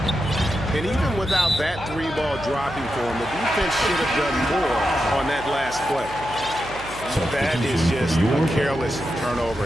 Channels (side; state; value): right; noise; hum, 15 dB below the sound